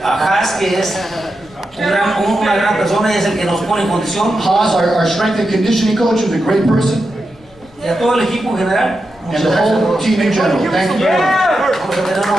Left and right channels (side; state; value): left; noise; rumble, 27 dB below the sound